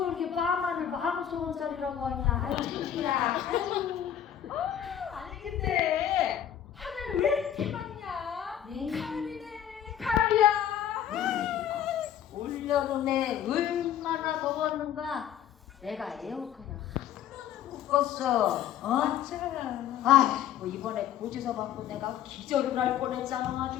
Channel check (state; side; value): quieter; right; 10.1 dB